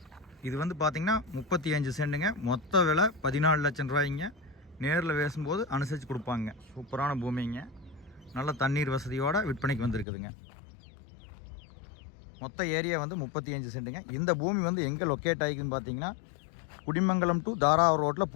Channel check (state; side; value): drops out; right; at 10.1 s